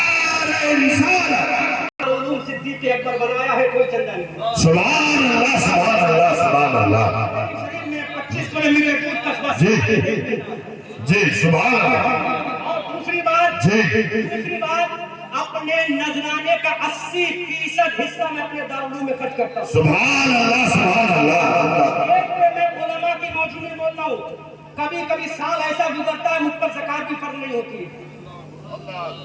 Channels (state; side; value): identical; both; correlation 1.00